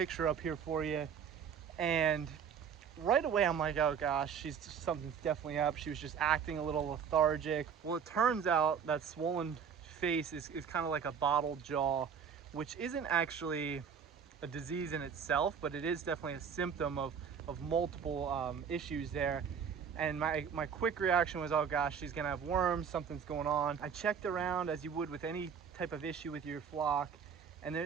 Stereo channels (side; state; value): left; quieter; 7.1 dB